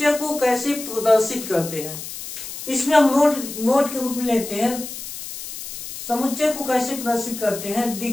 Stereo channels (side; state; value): left; noise; hiss, 10 dB below the sound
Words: को कैसे प्रदर्शित करते हैं। इसमें हम नोट के रूप में लेते हैं समुच्चय को कैसे प्रदर्शित करते हैं।